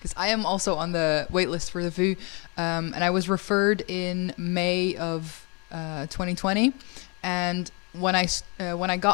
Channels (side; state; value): right; quieter; 32.7 dB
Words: I am also on the wait list for the VU, and I was referred in May of 2020, and when I